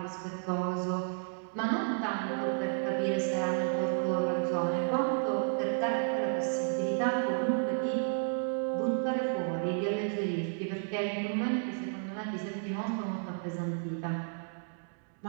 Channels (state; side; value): silent; left; digital silence